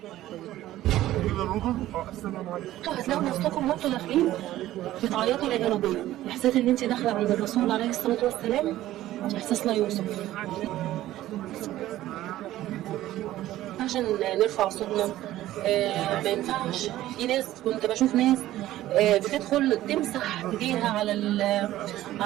انتوا هتلاقوا نفسكم وانتوا داخلين بتعيطوا يا ربنا. احساس ان انت داخله عند الرسول عليه الصلاه والسلام احساس لا يوصف. عشان نرفع صوتنا ما ينفعش. في ناس كنت بشوف ناس بتدخل تمسح ايديها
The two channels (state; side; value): quieter; left; 14.6 dB